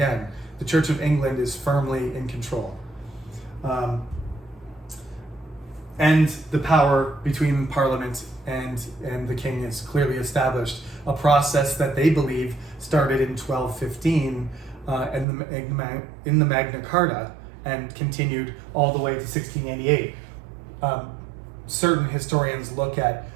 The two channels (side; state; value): left; drops out; at 15.2 s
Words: The Church of England is firmly in control. And the power between Parliament and the King is clearly established, a process that they believe started in 1215 in the Magna Carta and continued all the way to 1688. Certain historians look at